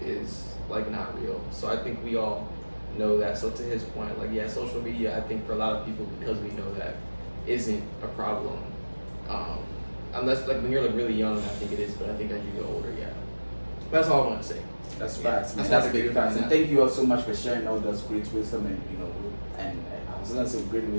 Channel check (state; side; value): inverted; both; correlation -1.00